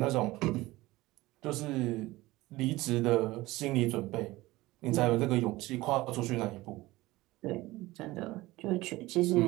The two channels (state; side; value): quieter; left; 19.1 dB